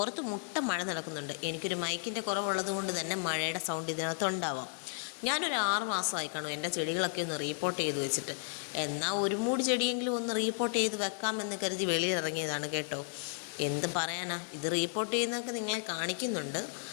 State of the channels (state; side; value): silent; right; 55 dB below the other